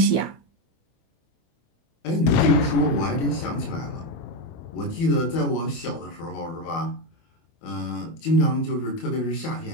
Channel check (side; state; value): right; late; 24 ms